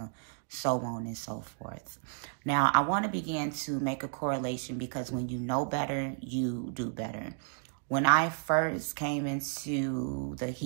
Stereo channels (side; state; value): left; silent; 56 dB below the other